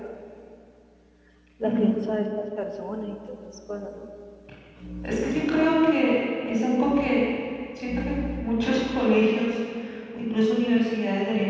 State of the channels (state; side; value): identical; both; correlation 1.00